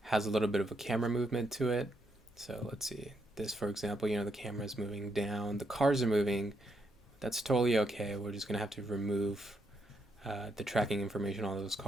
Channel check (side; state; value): both; normal; correlation 0.78